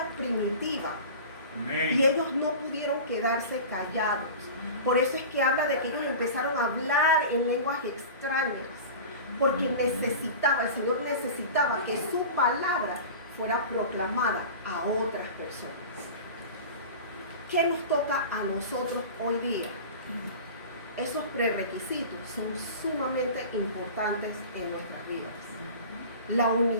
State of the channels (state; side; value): inverted; both; correlation -0.35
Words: primitiva. Y ellos no pudieron quedarse callados. Por eso es que habla de que ellos empezaron a hablar en lenguas extrañas, porque el Señor necesitaba que su palabra fuera proclamada a otras personas. ¿Qué nos toca a nosotros hoy día? Esos prerequisitos son sumamente importantes en nuestras vidas. La